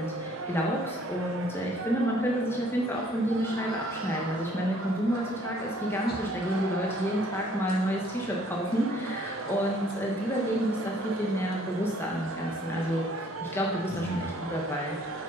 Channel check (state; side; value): normal; both; correlation 0.60